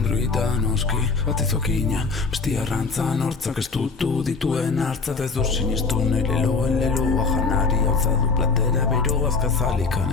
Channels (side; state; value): right; quieter; 4.3 dB